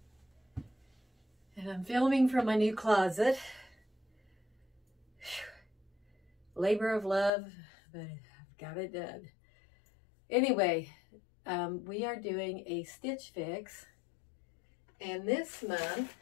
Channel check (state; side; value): drops out; right; at 7.3 s